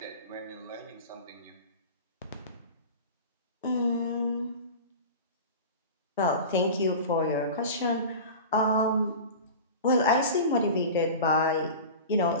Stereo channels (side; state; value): both; inverted; correlation -0.33